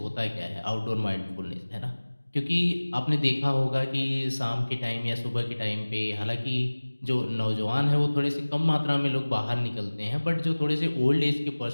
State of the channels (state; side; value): inverted; both; correlation -1.00